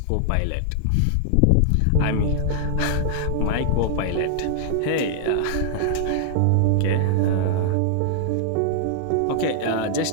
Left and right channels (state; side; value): different; both; correlation -0.01